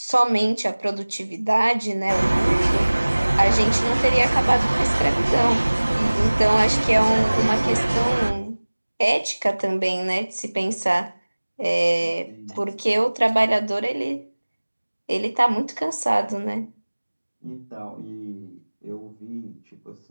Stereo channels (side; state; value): both; inverted; correlation -1.00